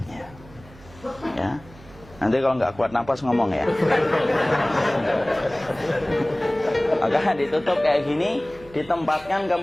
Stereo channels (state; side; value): noise; right; hum, 22 dB below the sound